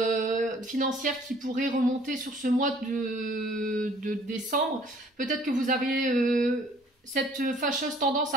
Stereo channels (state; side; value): normal; both; correlation 0.56